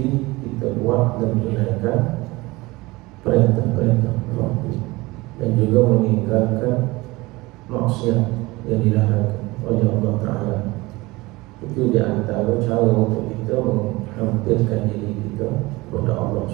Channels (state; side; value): quieter; left; 21.6 dB